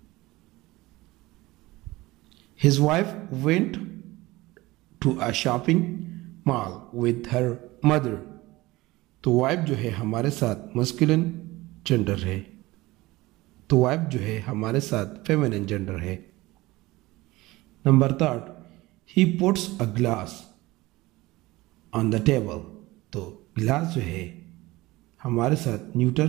his wife went to a shopping mall with her mother, तो वाइफ जो है हमारे साथ मस्कुलिन जेंडर है, तो वाइफ जो है हमारे साथ फेमिनिन जेंडर है। Number 3 he puts a glass on the table, तो ग्लास जो है हमारे साथ न्यूटर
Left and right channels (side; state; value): left; quieter; 19.8 dB